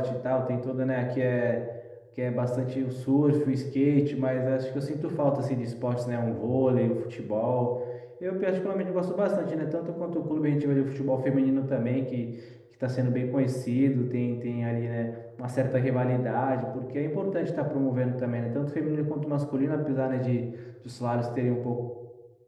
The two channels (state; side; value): identical; both; correlation 1.00